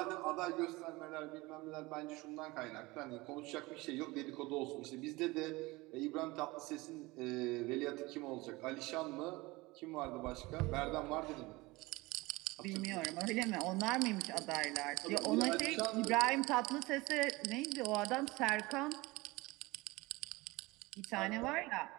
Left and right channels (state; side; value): quieter; left; 22.1 dB